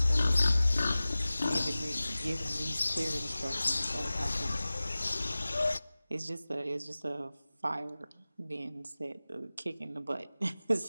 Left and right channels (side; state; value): both; inverted; correlation -0.98